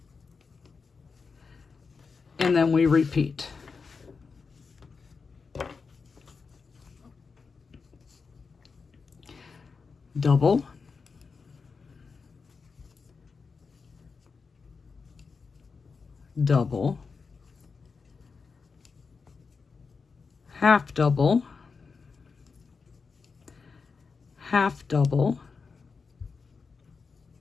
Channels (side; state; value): right; quieter; 4.9 dB